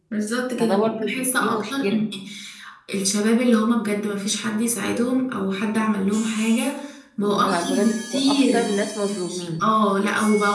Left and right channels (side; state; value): both; identical; correlation 1.00